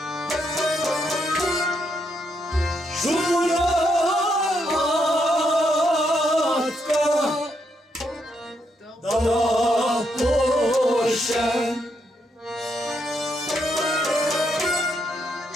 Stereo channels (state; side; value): normal; both; correlation 0.78